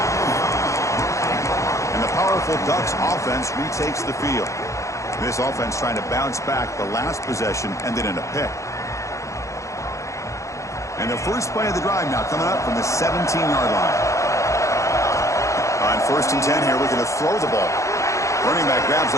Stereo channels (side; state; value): right; late; 0.15 ms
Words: And the powerful Ducks offense retakes the field. This offense trying to bounce back. The last possession ended in a pick. And the first play of the drive now coming up from the 17-yard line. On 1st and 10 here, we're going to throw the ball. Running back grabs